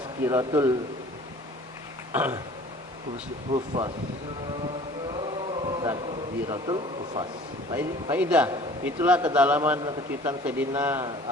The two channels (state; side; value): normal; both; correlation 0.48